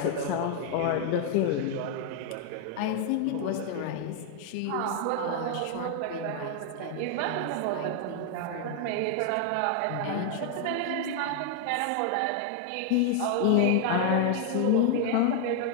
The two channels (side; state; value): both; different; correlation 0.00